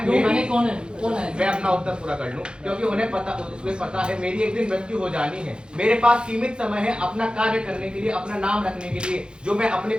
क्यों मेरी- कौन है? कौन है? मैं अपना उत्तर पूरा कर लूं। क्योंकि उन्हें पता है मेरी एक दिन मृत्यु हो जानी है। मेरे पास सीमित समय है अपना कार्य करने के लिए, अपना नाम रखने के लिए, जो मैं अपने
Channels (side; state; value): left; late; 0.051 ms